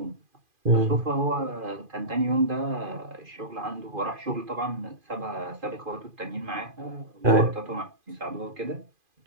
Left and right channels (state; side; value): late; left; 2.5 ms